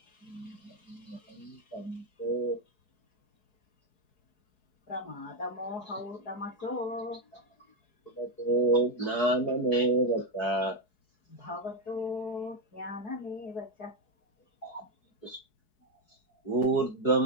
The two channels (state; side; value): late; right; 4.7 ms